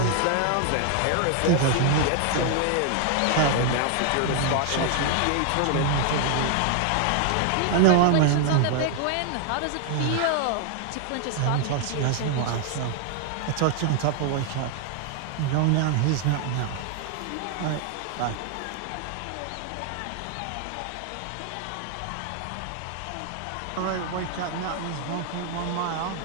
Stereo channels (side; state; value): both; different; correlation 0.00